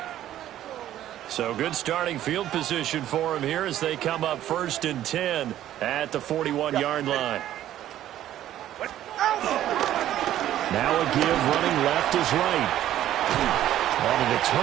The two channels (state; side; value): quieter; left; 12.4 dB